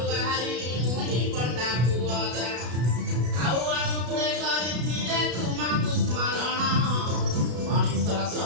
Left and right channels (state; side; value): late; left; 33 ms